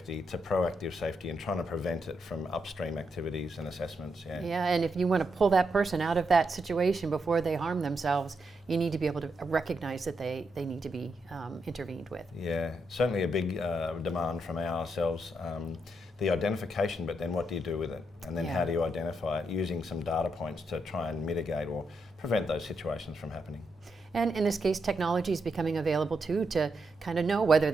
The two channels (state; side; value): normal; both; correlation 0.82